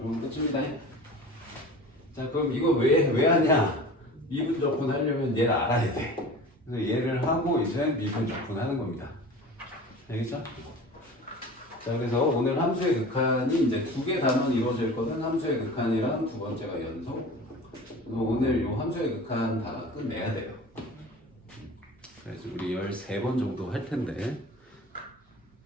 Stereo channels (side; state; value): both; normal; correlation 0.38